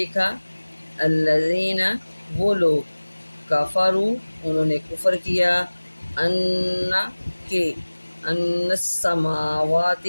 الذین، وہ لوگ، کفروا، انہوں نے کفر کیا، ان، کہ، ان السماوات،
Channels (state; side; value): inverted; both; correlation -1.00